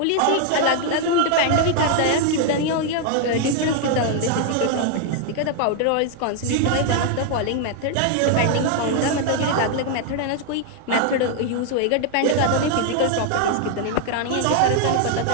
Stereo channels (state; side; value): different; both; correlation 0.00